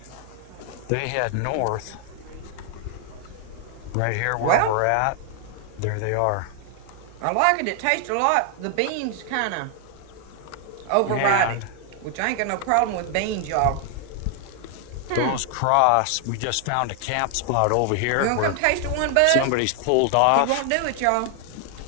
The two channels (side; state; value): both; different; correlation 0.00